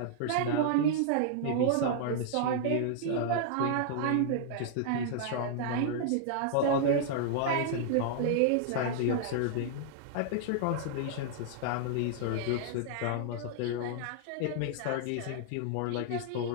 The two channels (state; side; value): different; both; correlation -0.01